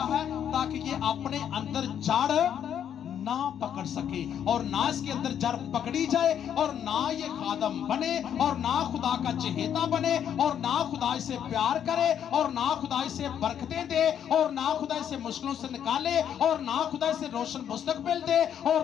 है, ताकि ये अपने अंदर जड़ ना पकड़ सके, और ना इसके अंदर जड़ पकड़ी जाए, और ना ये खादम बने, और ना खुदा का चहेता बने, और ना खुदा इसे प्यार करे, और ना खुदा इसे बरकतें दे, और ना खुदा इसे मुश्किलों से निकाले, और ना खुदा इसे रोशन मुस्तकबिल दे, और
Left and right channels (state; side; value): quieter; right; 9.2 dB